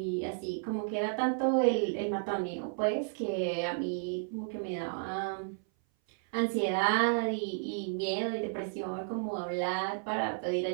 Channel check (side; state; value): left; silent; 56 dB below the other